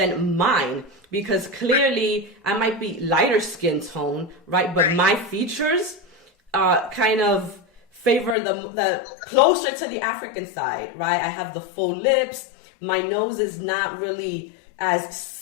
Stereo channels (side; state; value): right; drops out; at 8.3 s